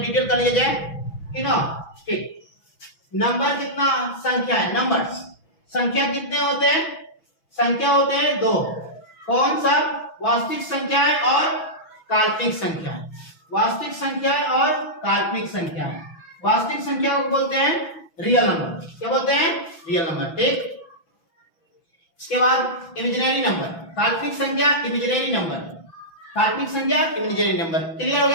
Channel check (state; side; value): late; right; 6.0 ms